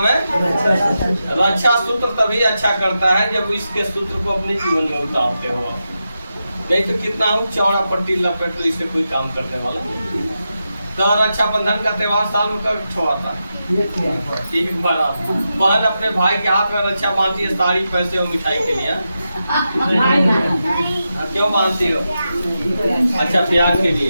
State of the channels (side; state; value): both; inverted; correlation -0.89